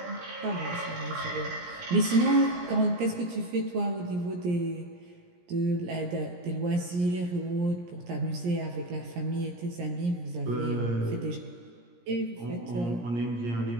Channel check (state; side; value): late; left; 17 ms